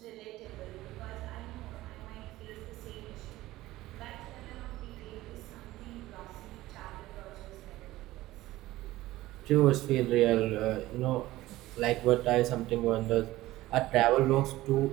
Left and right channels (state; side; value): quieter; left; 17.0 dB